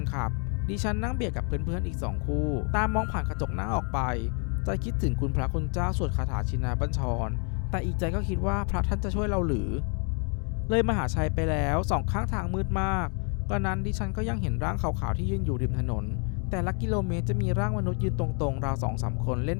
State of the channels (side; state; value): right; quieter; 38.9 dB